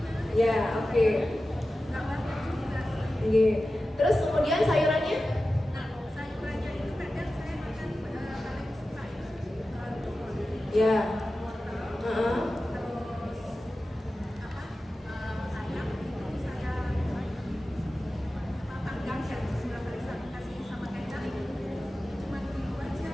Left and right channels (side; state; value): both; normal; correlation 0.94